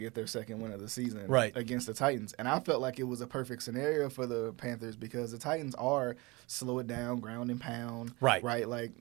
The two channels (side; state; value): left; quieter; 24.8 dB